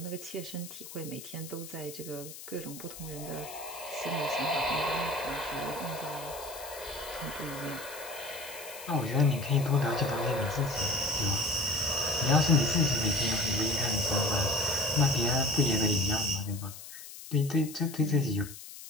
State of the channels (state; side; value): noise; left; hiss, 13 dB below the sound